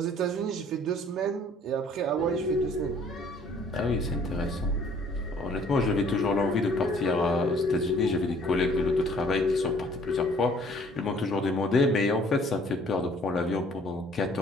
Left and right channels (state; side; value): normal; both; correlation 0.57